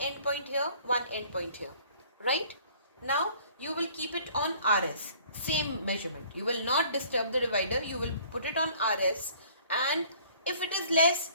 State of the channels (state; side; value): inverted; both; correlation -0.54